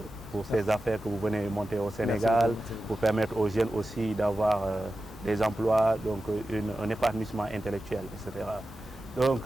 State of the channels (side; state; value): both; normal; correlation 0.93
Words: affaires que vous venez monter au Sénégal, pour permettre aux jeunes aussi d'avoir des emplois, donc un épanouissement intellectuel, etc. Donc,